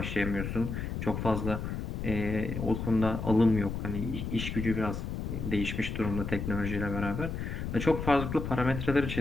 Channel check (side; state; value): left; noise; rumble, 4 dB below the sound